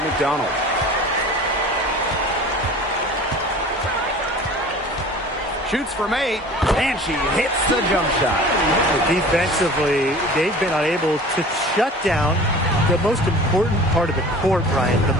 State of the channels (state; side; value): normal; both; correlation 0.42